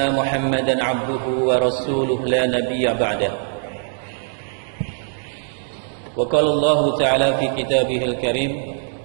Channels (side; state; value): left; silent; 65 dB below the other